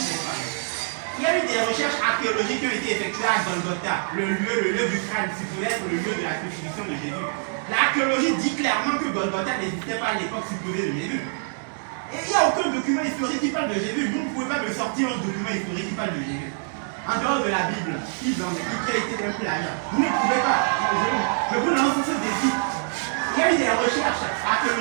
pas? Il y a eu des recherches archéologiques qui ont été effectuées à Golgotha, le lieu du crâne, si peut être le lieu de la crucifixion de Jésus. L'archéologie dit clairement que Golgotha n'existait pas à l'époque supposée de Jésus. Et il n'y a aucun document historique qui parle de Jésus. Vous ne pouvez pas me sortir un document historique qui parle de Jésus. En dehors de la Bible, qui a été un plagiat. Vous ne pouvez pas. Je vous lance ce défi. Il y a eu des recherches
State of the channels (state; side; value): silent; left; digital silence